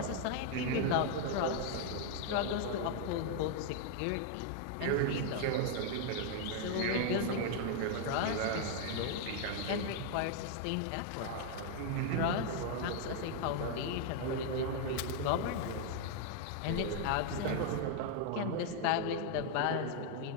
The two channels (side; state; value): both; different; correlation 0.00